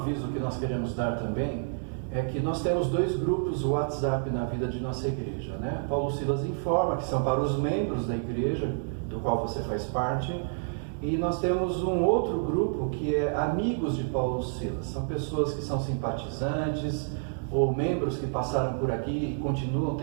que nós queremos dar também é que nós temos 2 grupos WhatsApp na vida de nossa igreja, né? Paulo Silas informa que são para os membros da igreja, do qual você faz parte, e nós temos um outro grupo que é Amigos de Paulo Silas. São pessoas que são simpatizantes, ou membros que passaram por aqui e continuam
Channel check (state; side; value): silent; left; digital silence